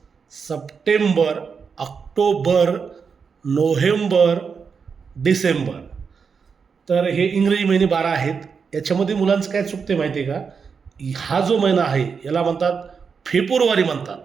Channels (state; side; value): quieter; left; 5.8 dB